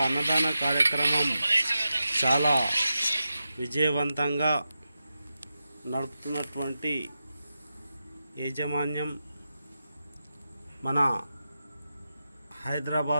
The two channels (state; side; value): inverted; both; correlation -0.90